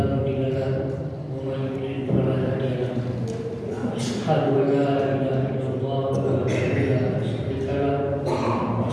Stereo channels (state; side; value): identical; both; correlation 1.00